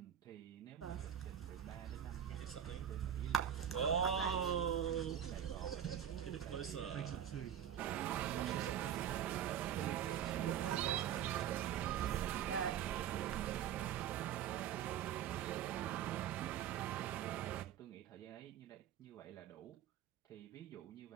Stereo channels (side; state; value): left; quieter; 9.6 dB